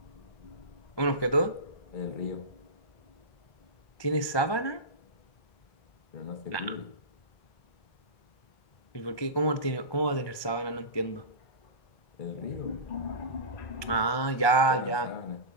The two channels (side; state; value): right; late; 1.2 ms